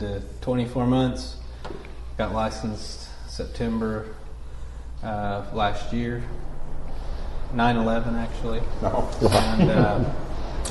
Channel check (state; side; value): identical; both; correlation 1.00